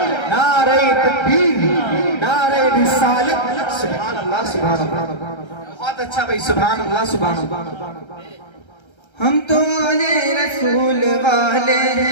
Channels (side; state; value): right; late; 1.3 ms